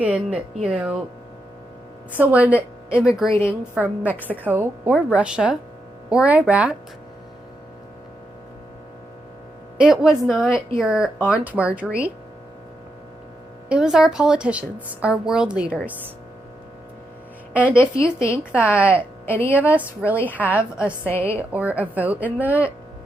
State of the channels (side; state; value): both; normal; correlation 0.83